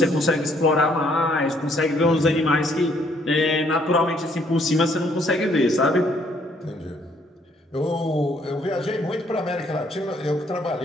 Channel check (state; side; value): normal; both; correlation 0.66